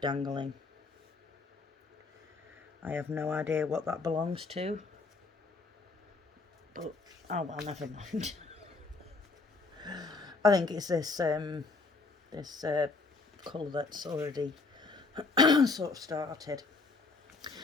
I have no idea what that belongs to. But, oh well, never mind. I think it's this colour that's already sort of started.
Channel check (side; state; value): right; quieter; 3.9 dB